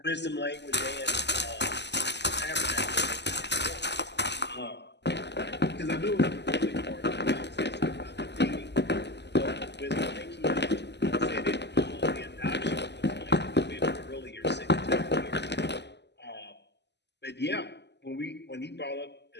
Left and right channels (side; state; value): right; late; 0.50 ms